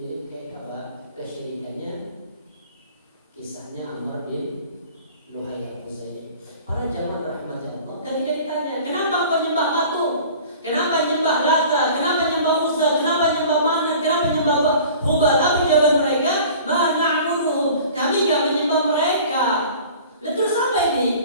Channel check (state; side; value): inverted; both; correlation -0.45